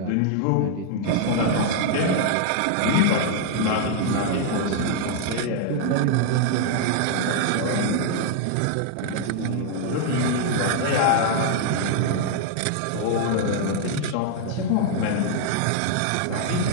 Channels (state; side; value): different; both; correlation 0.00